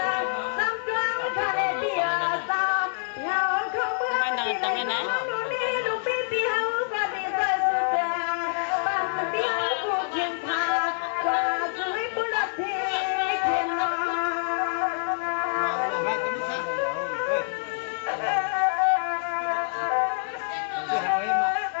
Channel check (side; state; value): right; silent; 61 dB below the other